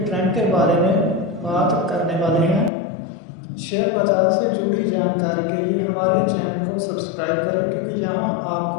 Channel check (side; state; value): right; drops out; at 2.7 s